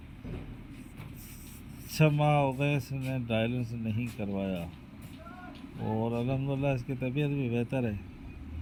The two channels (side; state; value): both; identical; correlation 1.00